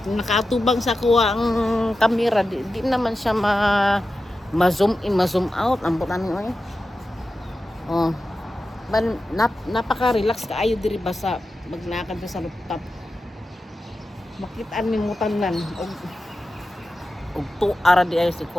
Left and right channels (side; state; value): both; normal; correlation 0.92